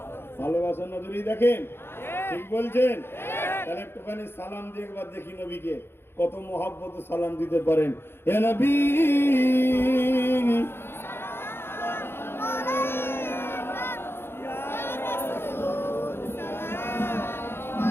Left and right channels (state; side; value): late; right; 0.11 ms